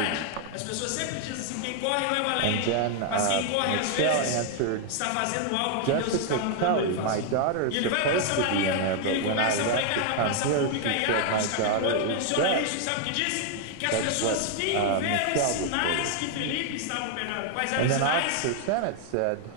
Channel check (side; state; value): both; different; correlation 0.00